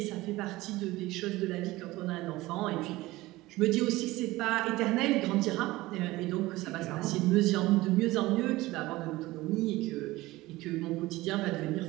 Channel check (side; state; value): left; quieter; 18.9 dB